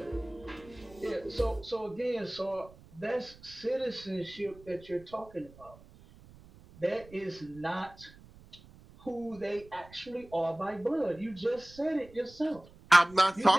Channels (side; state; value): right; noise; rumble, 22 dB below the sound